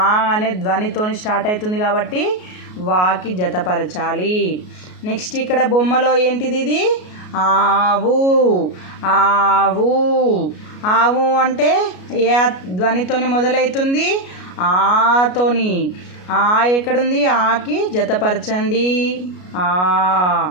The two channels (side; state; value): right; late; 33 ms